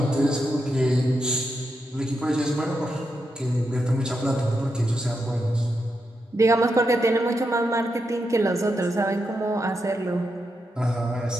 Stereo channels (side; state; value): both; normal; correlation 0.84